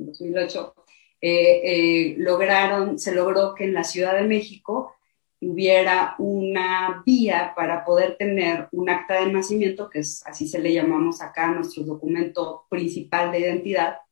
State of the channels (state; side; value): silent; right; 64 dB below the other